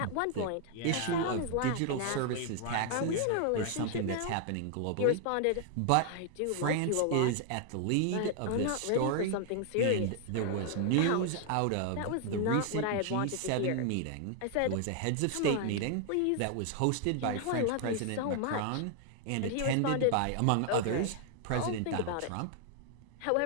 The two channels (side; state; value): both; different; correlation 0.00